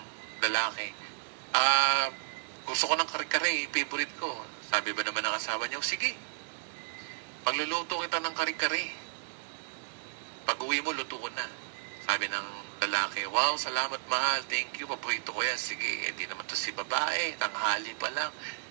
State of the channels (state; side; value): silent; left; 56 dB below the other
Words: lalaki, gusto ko ng kare-kare, favorite ko. Sabi ba naman ng asawa niya, sige, pagluluto kita ng kare-kare. Pag-uwi mo, luto ko na. Sabi ng lalaki, wow, salamat mahal, thank you, paborito ko yan. Sige, di naman to si babae, tanghali pa lang.